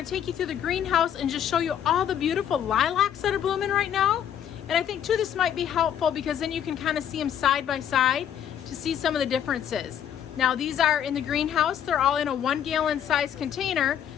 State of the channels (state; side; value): quieter; right; 9.5 dB